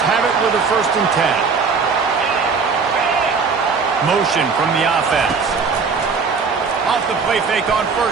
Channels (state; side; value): quieter; left; 5.1 dB